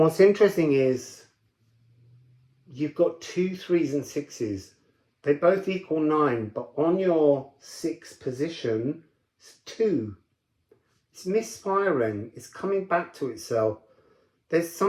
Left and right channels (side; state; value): both; identical; correlation 1.00